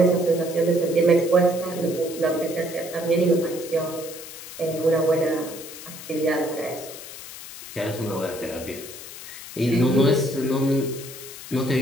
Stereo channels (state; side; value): noise; left; hiss, 13 dB below the sound